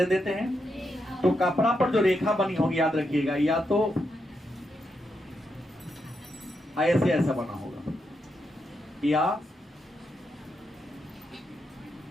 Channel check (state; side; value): normal; both; correlation 0.83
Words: देते हैं? तो कपड़ा पर जो रेखा बनी होगी याद रखिएगा, या तो ऐसे ऐसा बना होगा, या